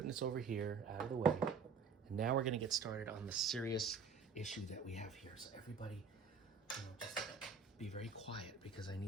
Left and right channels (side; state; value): left; quieter; 5.3 dB